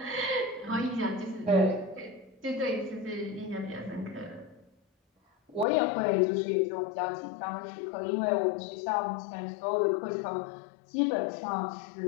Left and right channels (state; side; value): drops out; right; at 5.7 s